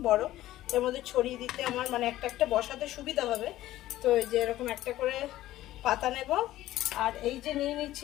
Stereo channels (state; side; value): quieter; right; 14.9 dB